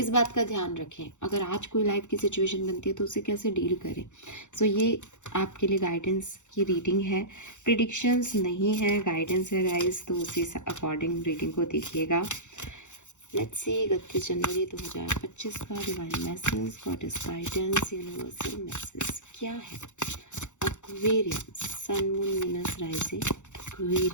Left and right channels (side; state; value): right; late; 0.84 ms